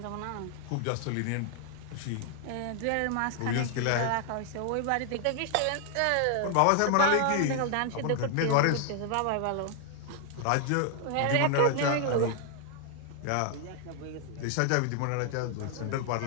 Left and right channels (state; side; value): different; both; correlation 0.00